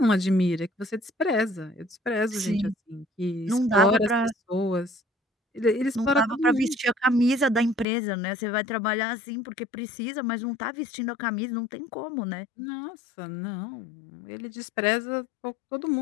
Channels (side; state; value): right; drops out; at 7.9 s